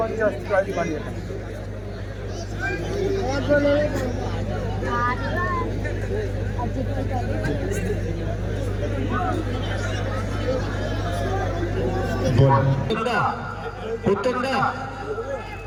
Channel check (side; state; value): both; identical; correlation 1.00